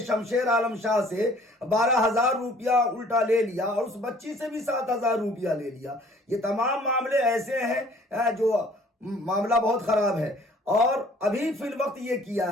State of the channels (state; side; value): normal; both; correlation 0.55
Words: शमशेर आलम शाह से 12,000 रुपया उल्टा ले लिया और उस बच्ची से भी 7,000 रुपया ले लिया। ये तमाम मामले ऐसे हैं जो मामला बहुत खराब है। और अभी फिल वक्त ये किया